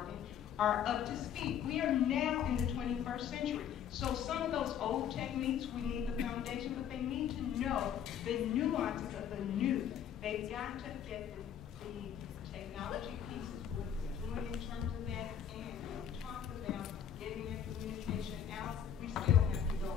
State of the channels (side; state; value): right; quieter; 8.9 dB